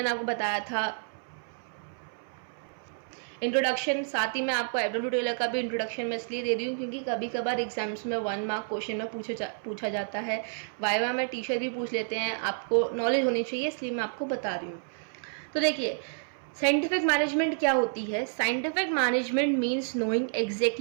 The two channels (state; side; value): silent; left; 56 dB below the other